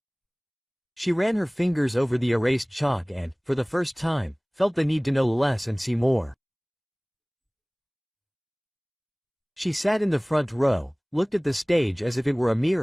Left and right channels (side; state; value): both; identical; correlation 1.00